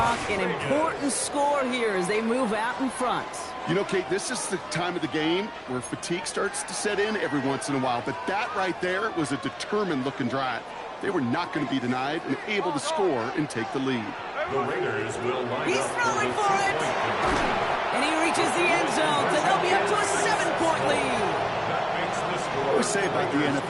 an important score here as they move out in front. You know, Kate, this is the time of the game where fatigue starts to set in every once in a while, but that right there was a determined-looking drive. They were not going to be denied and able to score and take the lead. The Raiders will line He's up throwing for it. And he reaches the end zone, so they'll be up to a 7-point lead. I always say about the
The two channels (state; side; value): identical; both; correlation 1.00